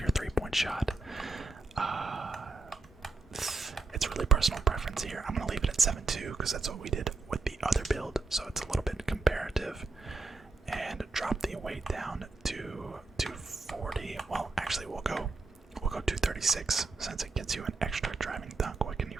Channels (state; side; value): quieter; left; 3.7 dB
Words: 3-point shot. It's really personal preference here. I'm gonna leave it at 7'2" because that's what we did with the other build, so it's a little bit comparative. And drop the weight down to 240. Well, actually, we'll go 236 since it gets you an extra driving dunk. What can you